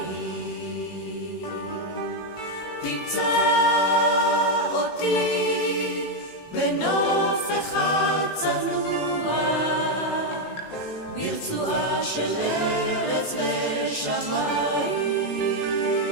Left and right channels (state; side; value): late; right; 18 ms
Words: תמצא אותי בנוף אחד צנוע ברצועה של ארץ ושמיים.